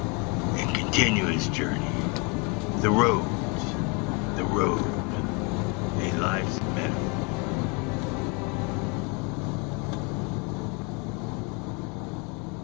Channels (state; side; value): quieter; right; 31.6 dB